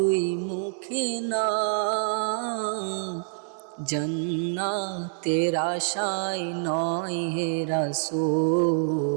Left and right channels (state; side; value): silent; left; 60 dB below the other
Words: মুখে না। জান্নাতের আশায় নয় হে